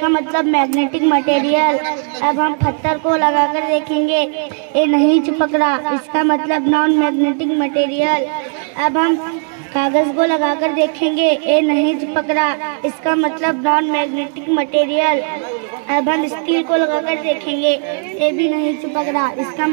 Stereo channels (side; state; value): left; silent; 58 dB below the other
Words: मतलब मैग्नेटिक मटेरियल। अब हम पत्थर को लगाकर देखेंगे, ये नहीं चिपक रहा, इसका मतलब नॉन मैग्नेटिक मटेरियल। अब हम कागज को लगाकर देखेंगे, ये नहीं चिपक रहा, इसका मतलब नॉन मैग्नेटिक मटेरियल। अब हम स्टील को लगाकर देखेंगे, ये भी नहीं चिपक रहा, इसका